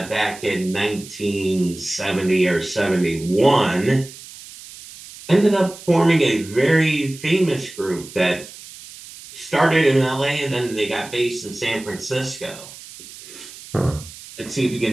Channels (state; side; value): noise; right; hiss, 17 dB below the sound